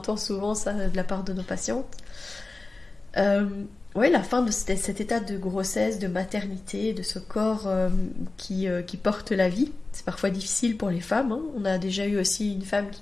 souvent ça de la part de nos patientes. La fin de cet état de grossesse, de maternité, de ce corps qui porte la vie. C'est parfois difficile pour les femmes. Hein. On a déjà eu aussi une femme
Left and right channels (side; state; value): right; quieter; 3.3 dB